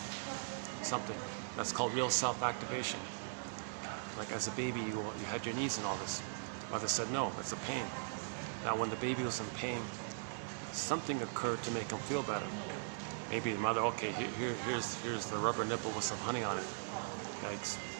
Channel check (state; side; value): silent; left; digital silence